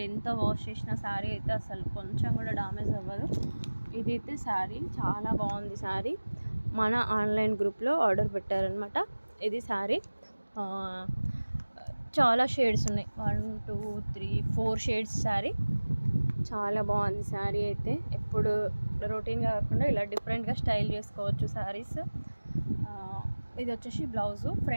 ఎంత వాష్ చేసిన శారీ అయితే అసలు కొంచెం కూడా డామేజ్ అవ్వదు. ఇదైతే శారీ చాలా బాగుంది. శారీ మన ఆన్లైన్ గ్రూప్లో ఆర్డర్ పెట్టారనమాట. ఇది శారీ చాలా షేడ్స్ ఉన్నాయి, 1 2 3 4 షేడ్స్ శారీ. చాలా బాగుంది శారీ అయితే. ఎప్పుడు రొటీన్గా కాకుండా ఇలా డిఫరెంట్గా స్టైల్ చేసుకోవచ్చు శారీస్. ఇది వచ్చేసి బ్లౌజు,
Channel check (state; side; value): inverted; both; correlation -1.00